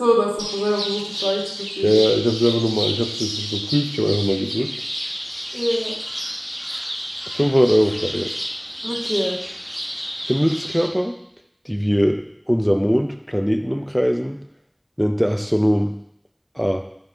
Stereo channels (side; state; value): both; identical; correlation 1.00